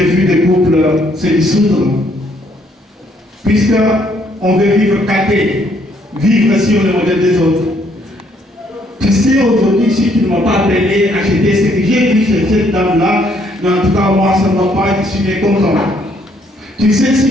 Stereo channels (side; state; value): both; normal; correlation 0.68